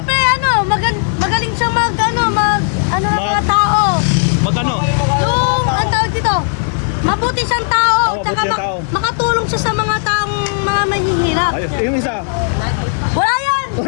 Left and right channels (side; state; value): right; silent; digital silence